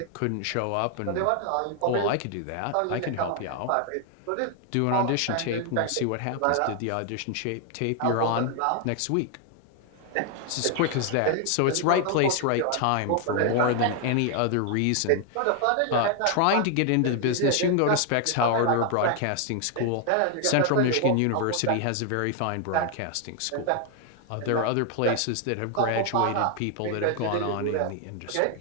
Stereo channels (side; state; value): both; different; correlation 0.00